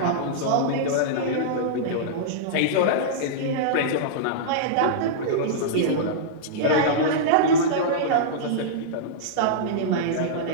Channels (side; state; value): both; different; correlation -0.03